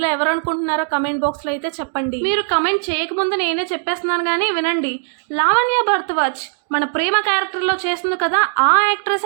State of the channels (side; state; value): left; silent; digital silence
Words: ఎవరు అనుకుంటున్నారో కమెంట్ బాక్స్ లో అయితే చెప్పండి. మీరు కమెంట్ చేయకముందు నేనే చెప్పేస్తున్నాను కానీ వినండి. లావణ్య భరద్వాజ్ మన ప్రేమ క్యారెక్టర్ లో చేస్తుంది కదా, ఆ